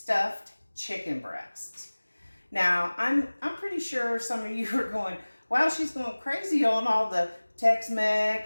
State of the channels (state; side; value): inverted; both; correlation -1.00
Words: chicken breasts. Now, I'm pretty sure some of you are going, wow, she's going crazy on all the